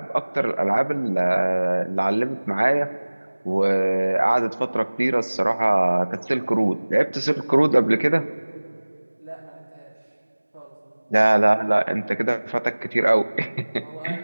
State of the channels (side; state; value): both; inverted; correlation -1.00